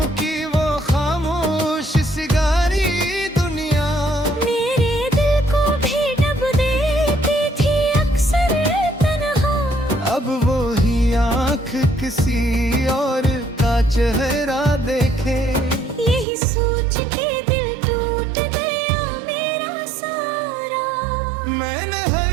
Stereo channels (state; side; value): drops out; left; at 16.2 s